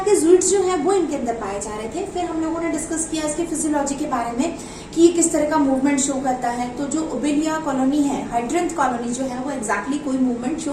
ज़ुइड्स जो है वो इनके अंदर पाए जा रहे थे। फिर हम लोगों ने डिस्कस किया इसके फिजियोलॉजी के बारे में कि ये किस तरह का मूवमेंट शो करता है। तो जो ओबेलिया कॉलोनी है, हाइड्रेंथ कॉलोनी जो है वो एग्जैक्टली कोई मूवमेंट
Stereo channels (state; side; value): identical; both; correlation 1.00